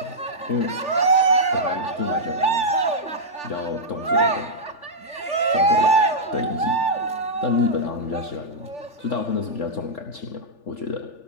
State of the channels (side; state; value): right; late; 3.4 ms